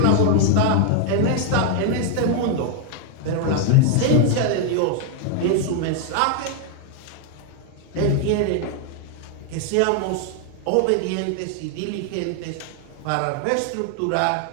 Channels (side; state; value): both; different; correlation 0.00